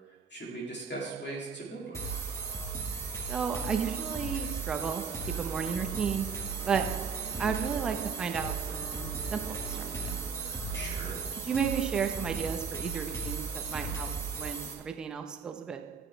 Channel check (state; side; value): quieter; left; 5.6 dB